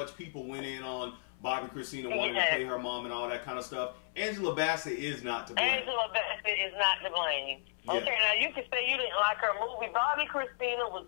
people went in on Bobbi Kristina wanting to play her mom and all that kind of stuff, Angela Bassett is not to blame. Angela Bassett is not to blame. Okay, now you can say you didn't like her movie. Bobbi Kristina was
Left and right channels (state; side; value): silent; right; 55 dB below the other